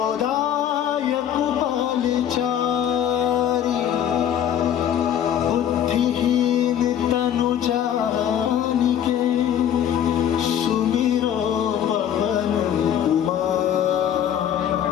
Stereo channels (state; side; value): quieter; right; 9.8 dB